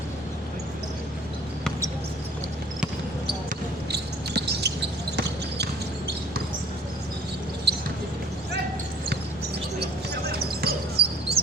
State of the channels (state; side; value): normal; both; correlation 0.54